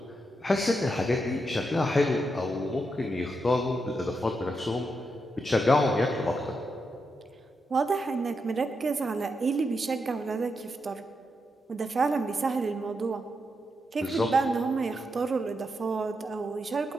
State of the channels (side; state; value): both; normal; correlation 0.84